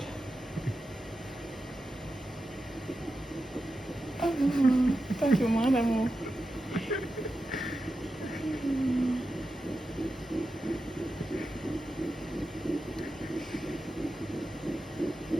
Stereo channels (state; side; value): normal; both; correlation 0.91